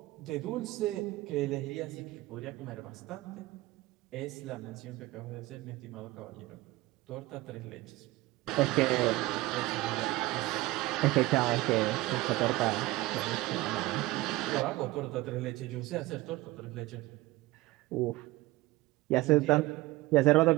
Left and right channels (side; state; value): left; quieter; 19.1 dB